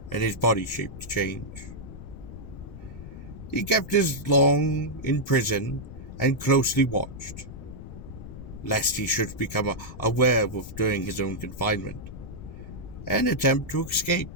and his body shape to change. He kept his long in prison and closely watched, lest he should become a werewolf during his own confinement, and attempt to escape.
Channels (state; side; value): noise; left; rumble, 12 dB below the sound